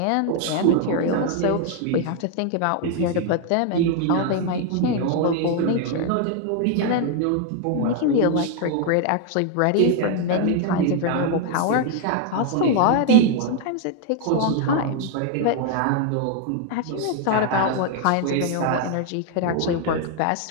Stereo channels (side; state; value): both; different; correlation 0.00